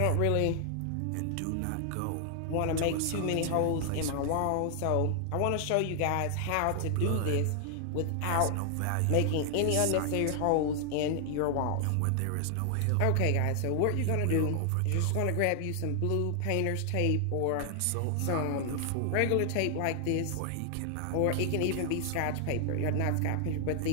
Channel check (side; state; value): both; different; correlation 0.00